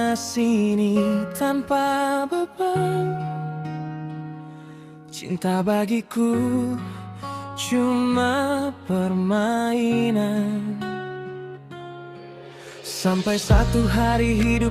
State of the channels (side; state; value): both; identical; correlation 1.00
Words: sini tanpa beban. Cinta bagiku cuma permainan. Sampai satu hari